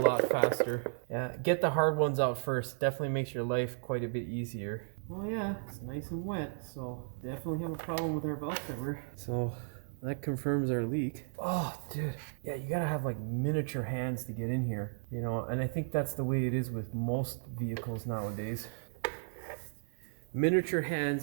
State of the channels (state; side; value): silent; left; 55 dB below the other